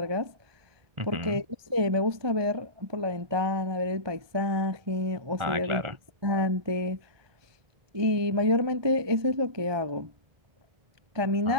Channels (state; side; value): late; left; 1.2 ms